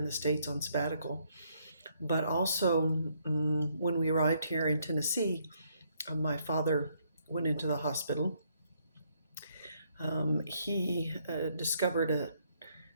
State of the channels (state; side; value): inverted; both; correlation -0.71